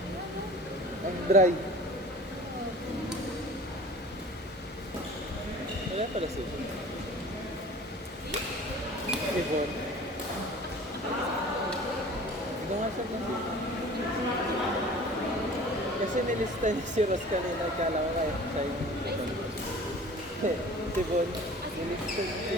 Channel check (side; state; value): both; normal; correlation 0.43